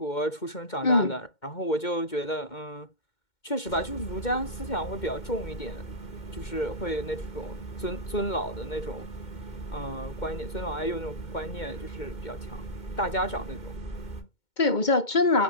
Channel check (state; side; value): late; right; 2.2 ms